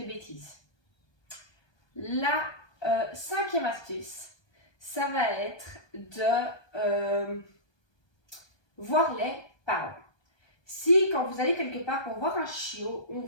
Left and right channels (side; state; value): right; late; 1.2 ms